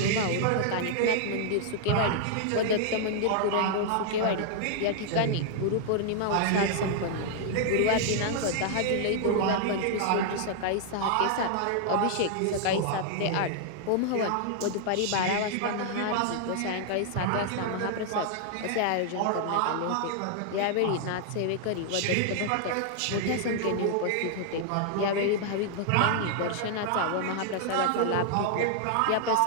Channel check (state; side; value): different; both; correlation -0.01